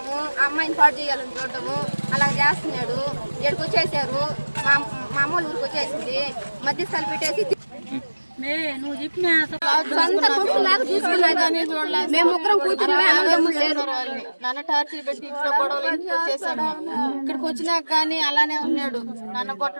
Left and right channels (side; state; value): both; inverted; correlation -1.00